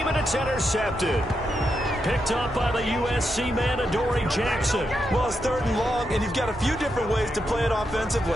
and it's intercepted. Picked up by the USC man, Adoree Jackson. Well, it's 3rd and long, and you've got a few different ways to play it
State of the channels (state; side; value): normal; both; correlation 0.84